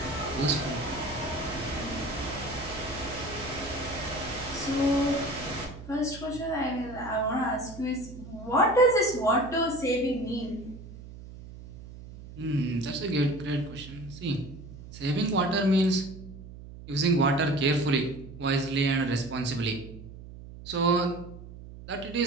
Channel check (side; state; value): right; noise; hum, 15 dB below the sound